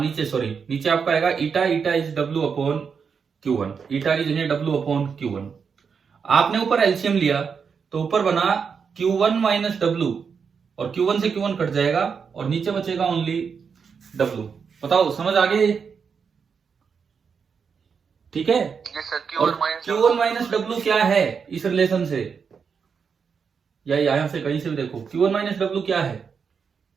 सॉरी नीचे आपका आएगा eta, eta is W upon Q1। Eta की जगह डब्ल्यू अपॉन Q1। आपने ऊपर एलसीएम लिया तो ऊपर बना Q1 माइनस डब्ल्यू, और Q1 से Q1 कट जाएगा और नीचे बचेगा ओनली डब्ल्यू। बताओ समझ आ गई? ठीक है। और Q1 माइनस डब्ल्यू क्या है इस रिलेशन से, या यहां से कहीं से भी देखो, Q1 माइनस डब्ल्यू क्या है?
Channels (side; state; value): left; quieter; 6.1 dB